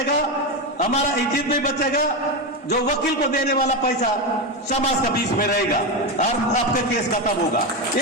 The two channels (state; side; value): normal; both; correlation 0.13